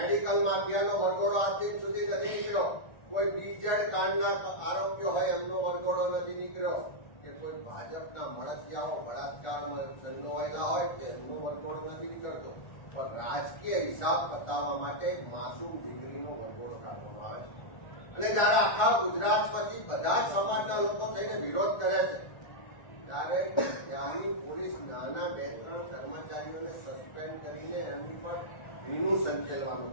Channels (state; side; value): late; right; 1.4 ms